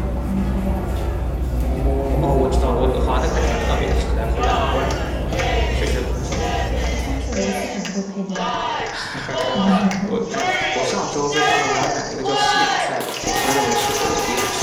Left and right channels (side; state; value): both; identical; correlation 1.00